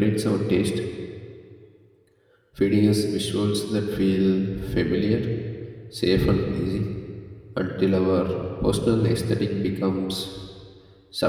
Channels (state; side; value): identical; both; correlation 1.00